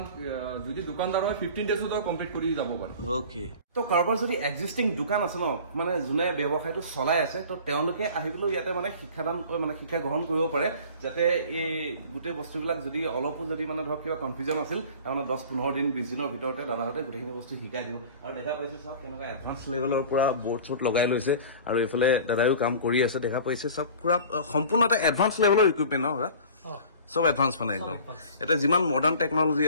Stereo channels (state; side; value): inverted; both; correlation -0.42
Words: যদি দোকানদাৰ হয় 15 ডেজতো কমপ্লিট কৰি যাব পাৰে। ওকে, তো কাৰোবাৰ যদি এক্সিষ্টিং দোকান আছে ন, মানে যোনে ব্যৱসায়টো চলাই আছে, তো তেওঁলোকে আহিবলৈ ইয়াতে মানে শিক্ষা গ্ৰহণ কৰিব পাৰে, যাতে এই গোটেই বস্তুবিলাক যদি অলপো যদি মানে ধৰক কিবা কনফিউজন আছিল, তাৰমানে 10-15 দিন 20 দিনৰ ভিতৰতে দাদাহঁতে গোটেইখিনি বস্তু শিকাই দিব। আৰু দেখা পাইছে চাওক কেনেকুৱা এডভান্স লেভেলৰ পৰা বৰ্ড চৰ্ট লগাই লৈছে, আৰু এইফালে দাদাইও কাম কৰি আছে। দেখা পাইছে চব পুৰা সম্পূৰ্ণ এটা এডভান্স লেভেলৰ ইকুইপমেণ্ট ন? চব এডভান্স মানে একদম এটা যিমান মডাৰ্ণ টেকনলজি